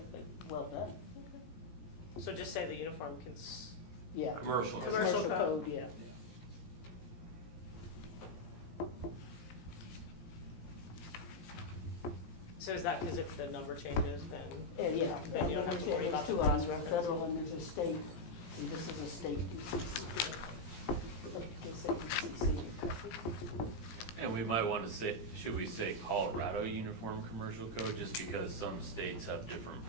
well done. So just say the uniform Yeah. Commercial. Commercial code. Yeah. so is that because if the number changes, then? Yeah. Then you don't have to worry about the There's two of cross them, there's a reference. federal and there's a state, and this is a state UCC. Look, just say UCC, you're covered. And we might want to say, should we say Colorado Uniform Commercial Code, just because some states have different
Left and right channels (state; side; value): late; right; 17 ms